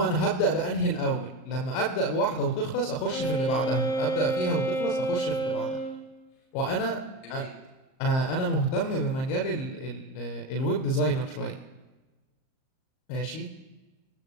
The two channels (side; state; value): right; late; 38 ms